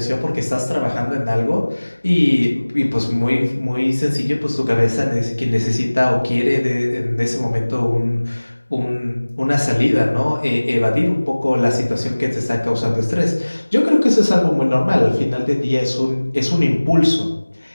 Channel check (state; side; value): inverted; both; correlation -1.00